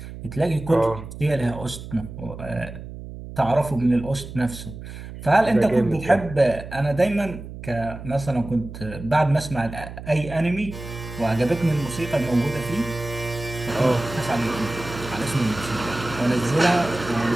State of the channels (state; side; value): noise; right; hum, 12 dB below the sound